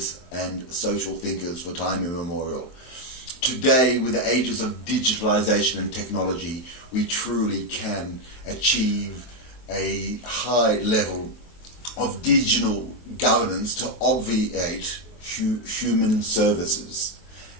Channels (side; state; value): right; late; 23 ms